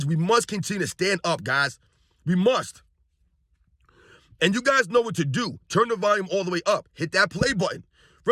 We must continue to stand up, guys. We must. And you guys know what to do. Turn the volume all the way up. Hit that play button.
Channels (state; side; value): identical; both; correlation 1.00